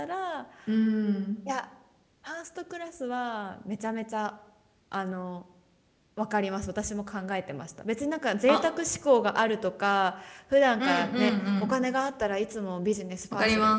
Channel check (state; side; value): identical; both; correlation 1.00